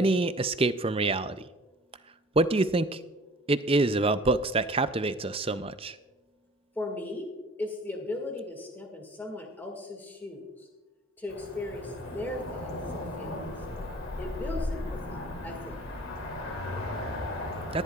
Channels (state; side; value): normal; both; correlation 0.48